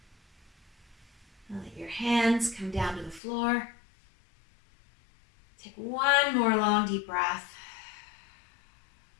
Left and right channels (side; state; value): right; drops out; at 3.2 s